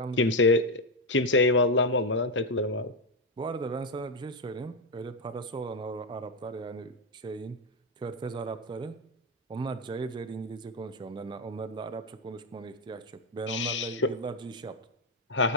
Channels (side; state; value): both; normal; correlation 0.06